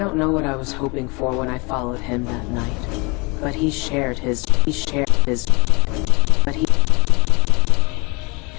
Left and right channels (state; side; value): quieter; right; 28.6 dB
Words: know what I was hoping for when I followed him that night, but his skill,